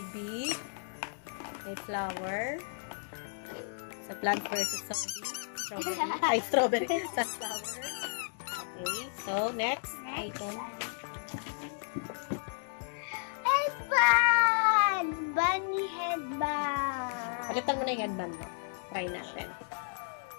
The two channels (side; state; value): right; silent; digital silence